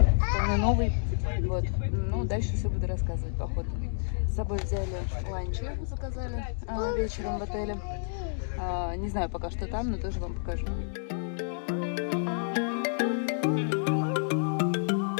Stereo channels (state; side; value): silent; right; digital silence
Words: вполне новый. Вот. Ну, дальше все буду рассказывать по ходу. С собой взяли ланчи, заказали вечером в отеле. Не знаю пока что там, но тоже вам покажу.